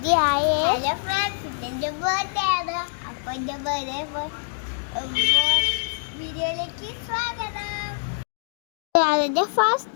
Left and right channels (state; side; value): silent; right; digital silence